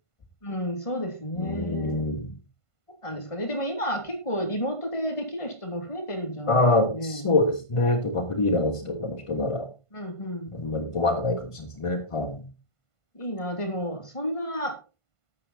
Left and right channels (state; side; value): late; right; 1.5 ms